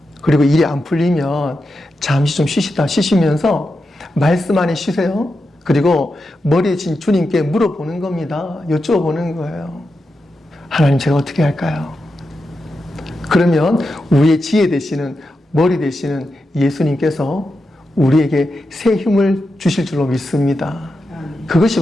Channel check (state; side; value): normal; both; correlation 0.88